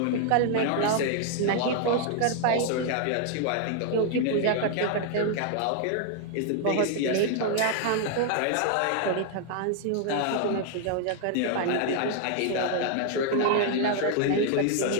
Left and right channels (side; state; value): both; different; correlation 0.00